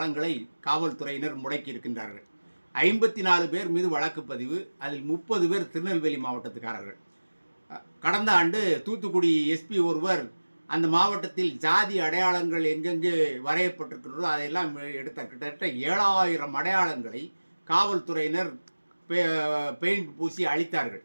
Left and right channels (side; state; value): both; inverted; correlation -1.00